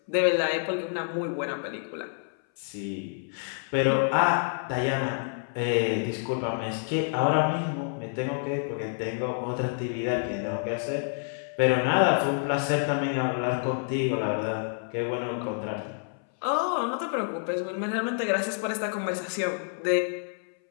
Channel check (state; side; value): silent; right; 58 dB below the other